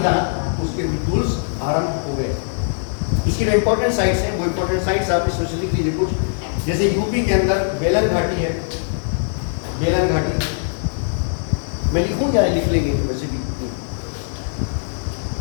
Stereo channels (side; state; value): right; silent; 60 dB below the other